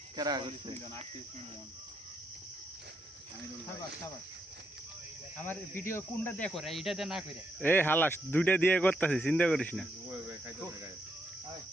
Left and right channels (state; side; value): normal; both; correlation 0.78